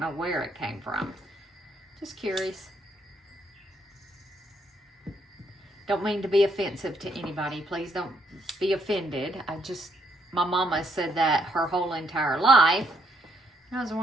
where it came from. Just curious. Don't mean to be offensive to anybody. Please don't be offended. My mama said that her whole entire life. And I was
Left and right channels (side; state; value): both; normal; correlation 0.72